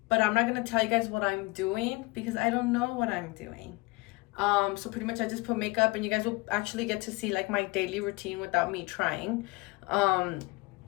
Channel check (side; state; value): right; quieter; 24.3 dB